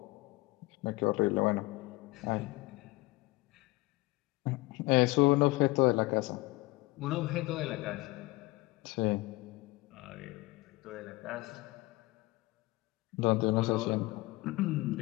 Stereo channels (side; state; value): right; quieter; 21.4 dB